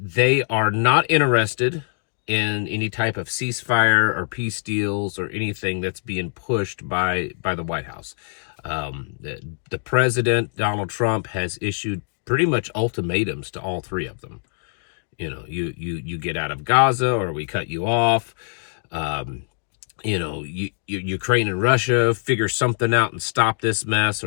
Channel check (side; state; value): right; silent; digital silence